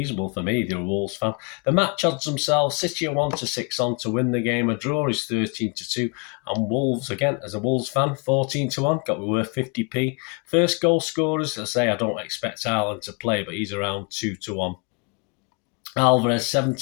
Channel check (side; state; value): right; quieter; 32.2 dB